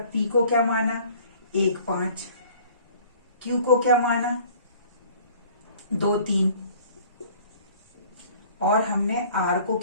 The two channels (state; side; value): inverted; both; correlation -0.51